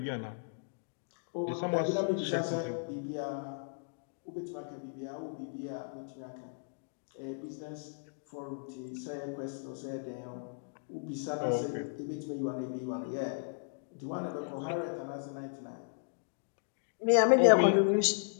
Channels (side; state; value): right; silent; digital silence